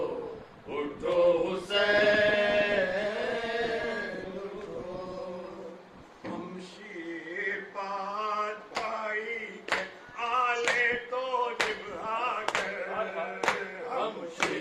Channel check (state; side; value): identical; both; correlation 1.00